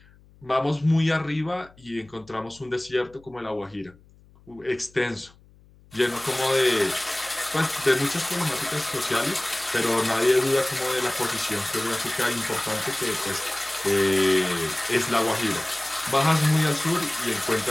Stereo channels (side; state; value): left; noise; hum, 27 dB below the sound